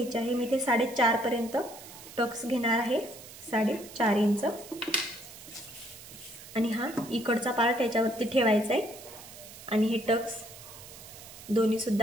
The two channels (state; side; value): noise; right; hiss, 16 dB below the sound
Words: आहे। मी इथे 4.5 पर्यंत टक्स घेणार आहे, 4.5 इंच, आणि हा इकडचा पार्ट याच्यावरती ठेवायचा आहे आणि हे टक्स दोन्ही